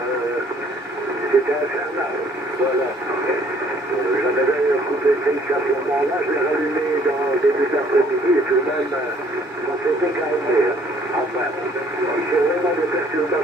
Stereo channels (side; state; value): both; normal; correlation 0.60